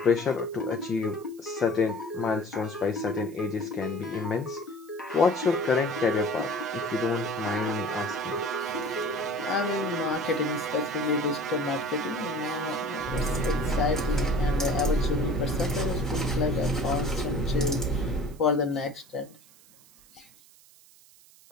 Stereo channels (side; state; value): right; noise; hiss, 25 dB below the sound